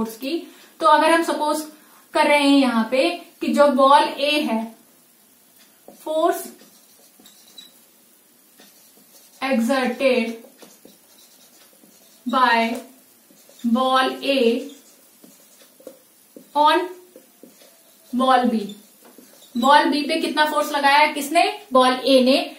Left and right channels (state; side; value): identical; both; correlation 1.00